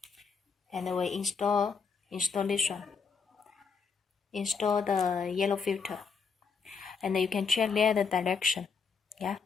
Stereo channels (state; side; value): quieter; right; 5.5 dB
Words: And we install this one. Install the yellow filter, and you can check there the direction, yeah,